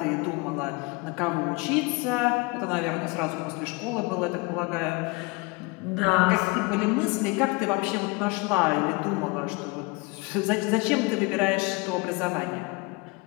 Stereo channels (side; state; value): right; quieter; 26.7 dB